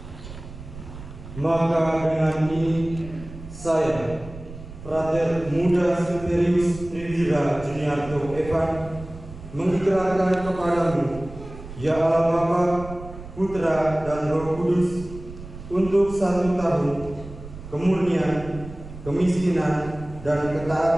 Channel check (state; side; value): noise; right; rumble, 14 dB below the sound